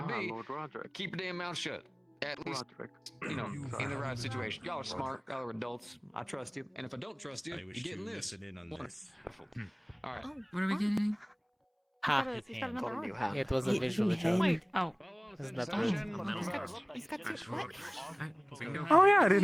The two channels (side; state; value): both; identical; correlation 1.00